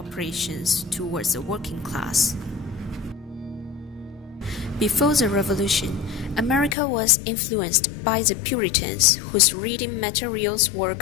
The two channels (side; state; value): right; drops out; at 6.8 s